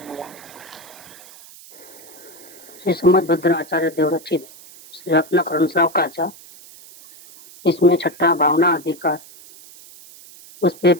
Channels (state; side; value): noise; right; hiss, 20 dB below the sound